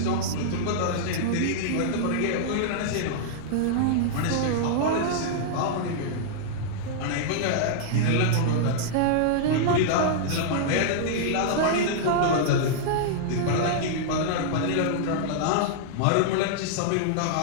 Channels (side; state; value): both; different; correlation -0.01